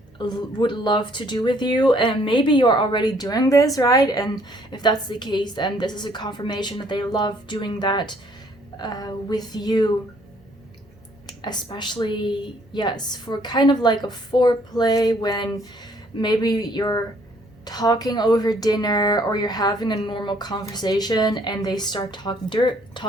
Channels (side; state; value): both; normal; correlation 0.63